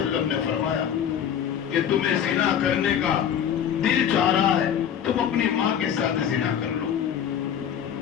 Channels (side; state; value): right; quieter; 9.1 dB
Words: نے فرمایا کہ تمہیں زنا کرنے کا دل چاہ رہا ہے، تم اپنی ماں کے ساتھ زنا کر لو۔